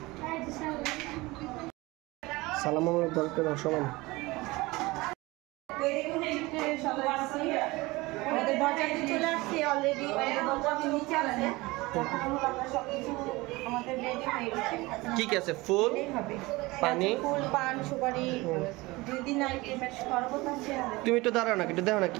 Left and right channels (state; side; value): quieter; left; 21.8 dB